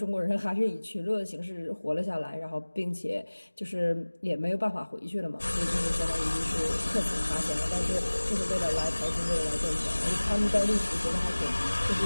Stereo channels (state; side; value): inverted; both; correlation -1.00